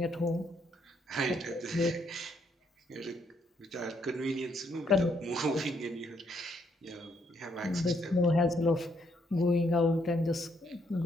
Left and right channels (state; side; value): normal; both; correlation 0.72